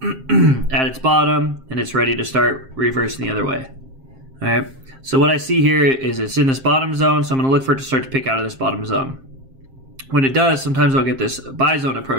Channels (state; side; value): late; left; 7.5 ms